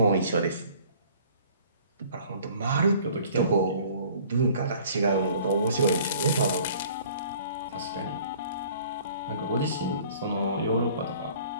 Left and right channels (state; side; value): inverted; both; correlation -0.52